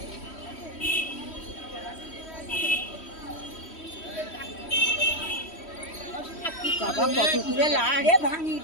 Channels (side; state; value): right; late; 3.1 ms